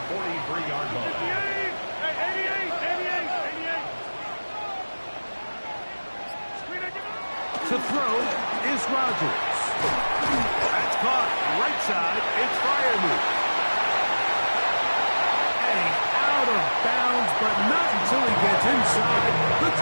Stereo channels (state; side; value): inverted; both; correlation -1.00